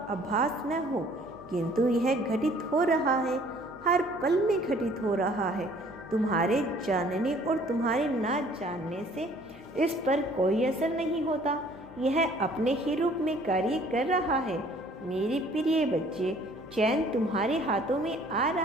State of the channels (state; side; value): noise; left; hum, 23 dB below the sound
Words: आभास न हो, किंतु यह घटित हो रहा है, हर पल में घटित हो रहा है। तुम्हारे जानने और तुम्हारे ना जानने से इस पर कोई असर नहीं होता, यह अपने ही रूप में कार्य कर रहा है। मेरे प्रिय बच्चे, चैन तुम्हारे हाथों में आ